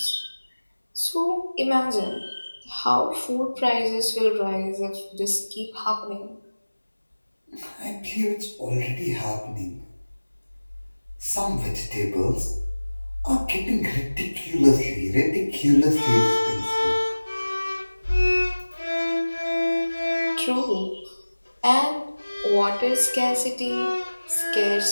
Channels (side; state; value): both; inverted; correlation -1.00